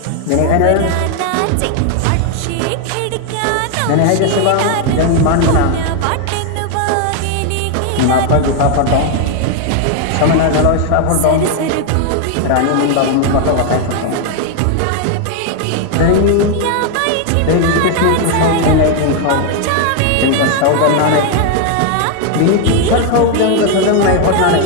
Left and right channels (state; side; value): different; both; correlation 0.00